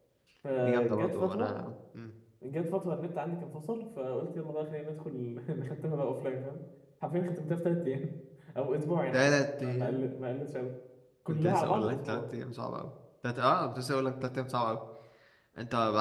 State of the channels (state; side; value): identical; both; correlation 1.00